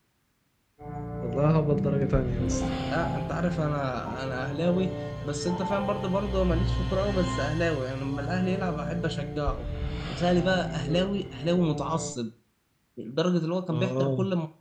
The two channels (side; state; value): both; identical; correlation 1.00